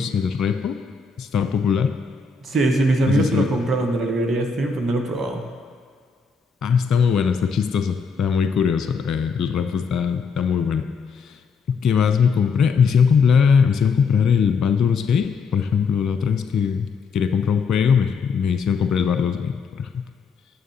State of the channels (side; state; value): right; quieter; 5.0 dB